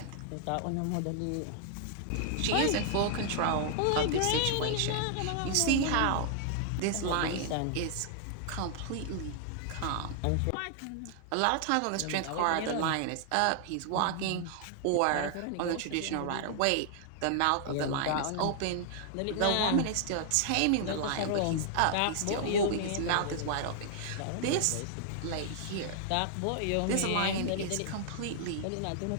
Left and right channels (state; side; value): different; both; correlation -0.01